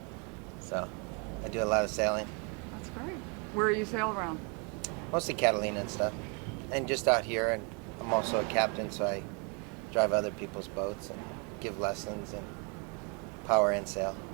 So I do a lot of sailing, That's great. Where you sail around? mostly Catalina and stuff, and just out here. And I'm also a captain, so I drive other people's boats and give lessons and power and sail.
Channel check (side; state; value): left; quieter; 34.8 dB